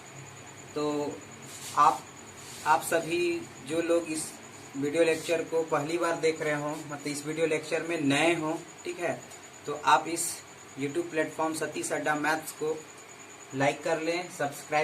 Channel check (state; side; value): identical; both; correlation 1.00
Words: तो आप सभी जो लोग इस वीडियो लेक्चर को पहली बार देख रहे हो, मतलब इस वीडियो लेक्चर में नए हो, ठीक है, तो आप इस YouTube प्लेटफॉर्म सतीश अड्डा मैथ्स को लाइक कर लें,